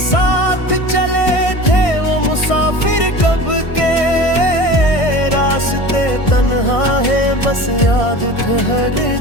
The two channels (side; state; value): right; late; 1.6 ms